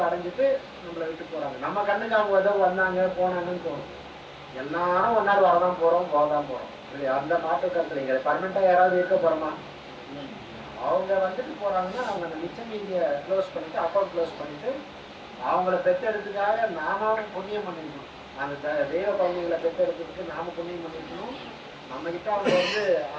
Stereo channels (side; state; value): both; identical; correlation 1.00